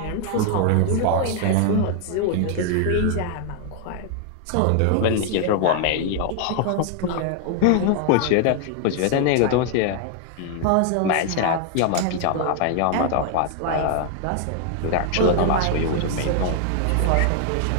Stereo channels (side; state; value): both; different; correlation 0.00